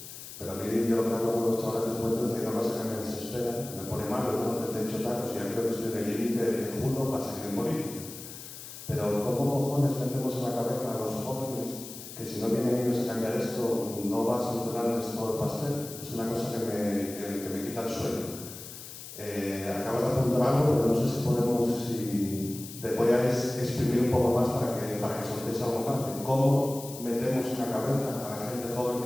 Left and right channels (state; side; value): noise; left; hiss, 13 dB below the sound